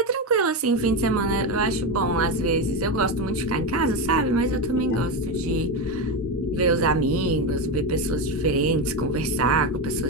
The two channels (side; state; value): both; normal; correlation 0.14